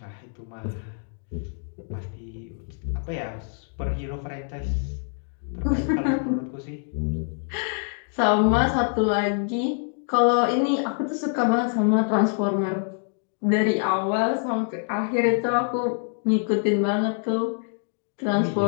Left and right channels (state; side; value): silent; right; 59 dB below the other